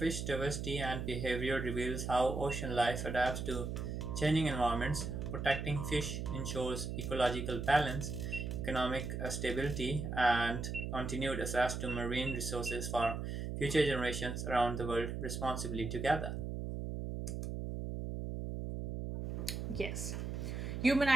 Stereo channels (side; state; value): right; noise; hum, 4 dB below the sound